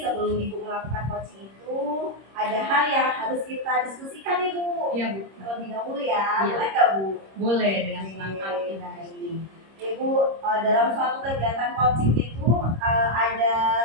sebelum Ibu melakukan coaching itu ada hal yang harus kita diskusikan nih Bu. Iya Bu. Terlebih dahulu ya, boleh nggak Bu? Boleh, dengan senang hati. Ibu, dalam suatu kegiatan coaching itu ada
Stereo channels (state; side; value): late; left; 26 ms